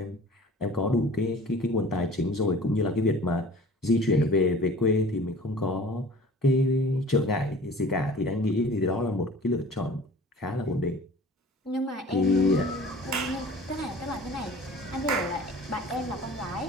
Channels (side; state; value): both; normal; correlation 0.45